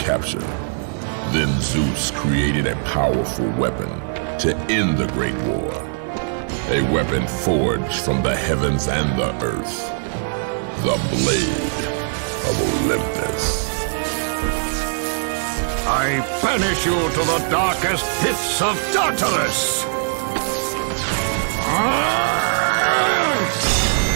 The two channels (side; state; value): left; silent; digital silence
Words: Then Zeus created a powerful weapon to end the Great War. A weapon forged from the heavens and the earth. The Blade of Olympus. I banish you to the darkest pits of Tartarus!